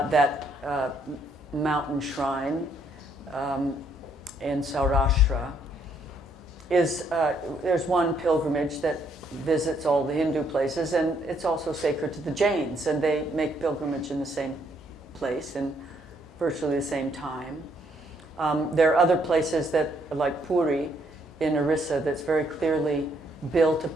mountain shrine in Saurashtra, there's one pilgrimage that visits all the Hindu places, and it's also sacred to the Jains, and they make pilgrimage in the same place in virtually the same time. There are other places that, like Puri in Orissa, that's very clearly built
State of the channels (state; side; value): normal; both; correlation 0.70